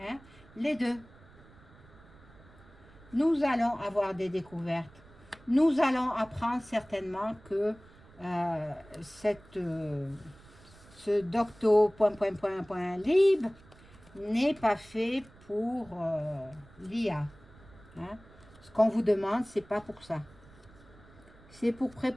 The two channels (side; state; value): right; noise; rumble, 24 dB below the sound